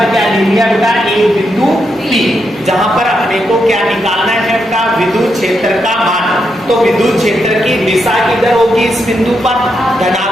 क्या ले लिया बेटा, एक बिंदु P, जहां पर अपने को क्या निकालना है बेटा, विद्युत क्षेत्र का मान। तो विद्युत क्षेत्र की दिशा किधर होगी, इस बिंदु पर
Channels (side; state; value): both; normal; correlation 0.82